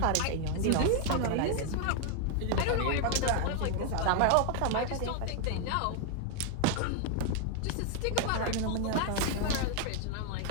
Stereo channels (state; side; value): different; both; correlation 0.00